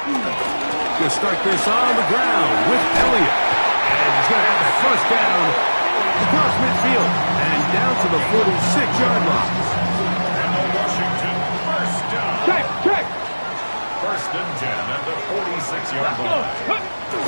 Going to start this on the ground with Elliott. And he's going to have that first down across midfield and down to the 46-yard line. And Washington, first down. Check! 1st and 10 at the 46-yard line.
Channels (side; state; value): both; inverted; correlation -1.00